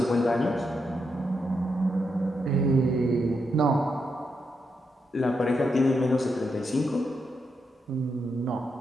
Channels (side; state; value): both; normal; correlation 0.82